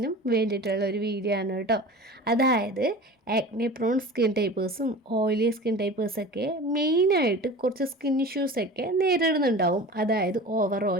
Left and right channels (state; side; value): normal; both; correlation 0.37